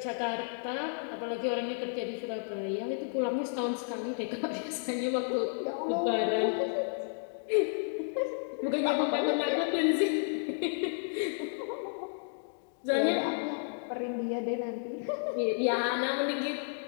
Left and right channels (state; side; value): silent; right; digital silence